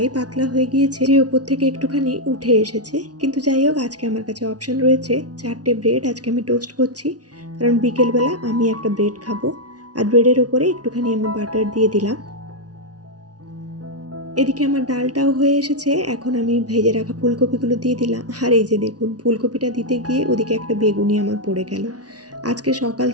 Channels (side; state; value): left; late; 0.68 ms